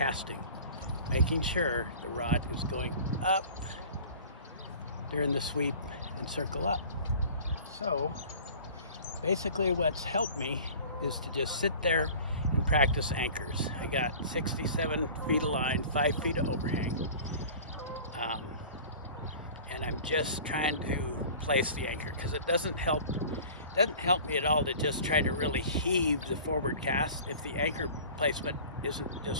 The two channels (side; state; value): both; inverted; correlation -0.43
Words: making sure the rod is going up during the sweep and circle up. So basically what's helped me is to just sit there and practice anchors. I got 67 feet of line, 5 feet of overhang. And I'm just trying to place the anchor, because it doesn't help me at all to just try to really heave the forward cast if the anchor placement isn't